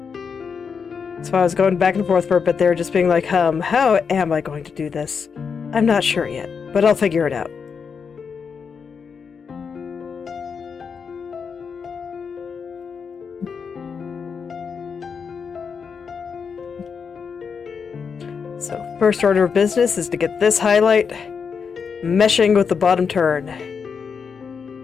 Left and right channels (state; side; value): quieter; right; 6.0 dB